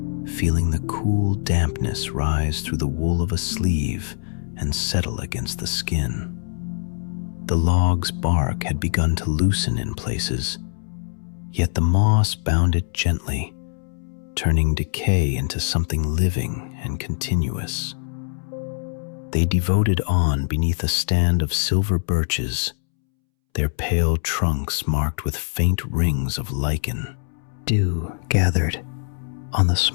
feeling the cool dampness rise through the wool of a sleeve and settle against the skin. The log's bark had begun to loosen in places, yet the moss bound it gently, turning decay into something living and continuous. They devoted on beneath a stand of silver birches, their pale trunks marked with faint rings of lichen. Dew gathered on the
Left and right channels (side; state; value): right; silent; 63 dB below the other